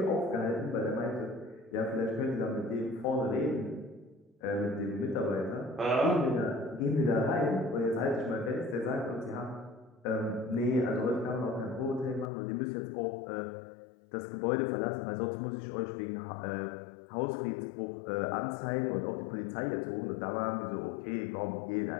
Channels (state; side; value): drops out; right; at 12.3 s